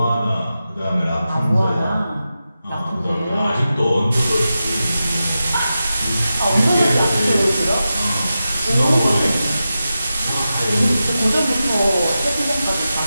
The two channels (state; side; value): inverted; both; correlation -0.91